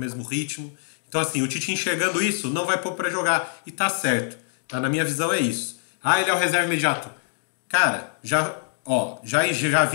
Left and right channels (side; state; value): right; silent; digital silence